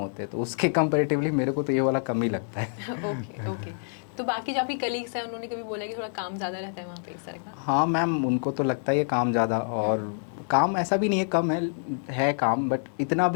हैं, तो उसके कंपैरेटिवली मेरे को तो ये वाला कम ही लगता है। ओके। तो बाकी जो आपकी कलीग्स हैं उन्होंने कभी बोला कि थोड़ा काम ज़्यादा रहता है वहाँ पे इस तरह का? हाँ मैम, उनको तो लगता ही है काम ज़्यादा। और काम ऐसा भी नहीं है, कम है काम, बट इतना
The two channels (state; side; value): silent; right; digital silence